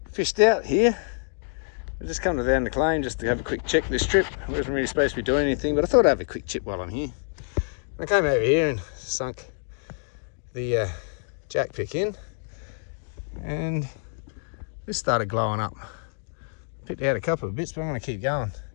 fished out here. I just come down the claim just to have a quick check this trip. I wasn't really supposed to be doing anything, but I thought I'd have a quick chip while I'm here. I came over here and sunk the jack pick in, and this started glowing up. Picked out a couple of bits, but I'm going to keep going,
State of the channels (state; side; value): silent; right; 61 dB below the other